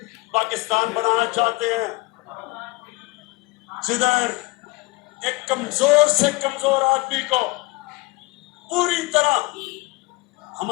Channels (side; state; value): right; quieter; 23.8 dB